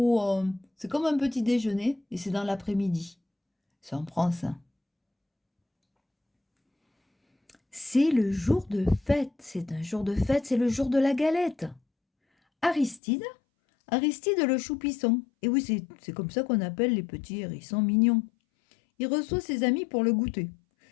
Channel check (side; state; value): right; drops out; at 13.0 s